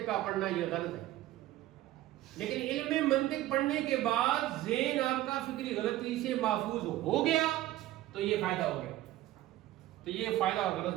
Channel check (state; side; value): quieter; left; 15.2 dB